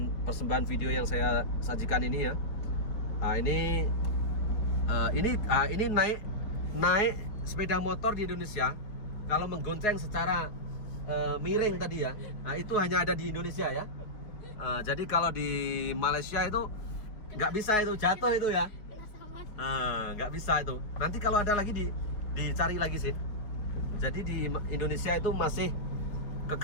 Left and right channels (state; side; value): late; right; 4.8 ms